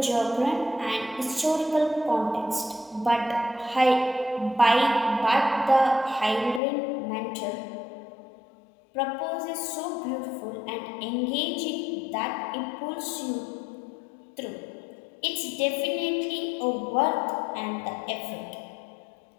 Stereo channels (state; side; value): drops out; right; at 6.6 s